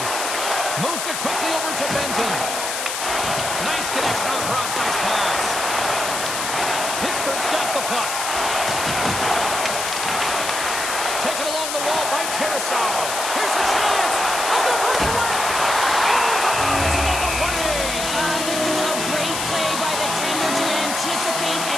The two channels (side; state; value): left; noise; hiss, 3 dB below the sound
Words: Moves it quickly over to Benton. Nice connection on the cross-ice pass. Pittsburgh's got the puck. Taken along the wall by Tarasov. Here's a chance. On the breakaway. Oh, it's another play. This is a great play by the tender to anticipate